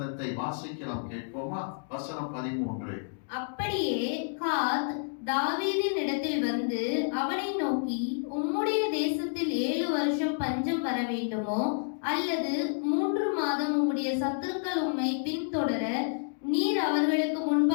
வாசிக்கலாம், கேட்போமா? வசனம் 13. அப்படியே காத் தாவீதின் இடத்தில் வந்து அவனை நோக்கி, உம்முடைய தேசத்தில் 7 வருஷம் பஞ்சம் வர வேண்டுமோ, அல்லது 3 மாதம் உம்முடைய சத்துருக்கள் உம்மை பின்தொடர நீர் அவர்களுக்கு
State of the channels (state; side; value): silent; right; digital silence